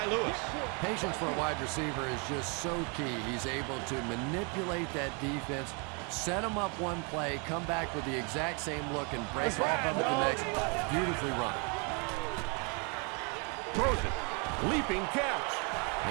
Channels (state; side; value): quieter; left; 34.6 dB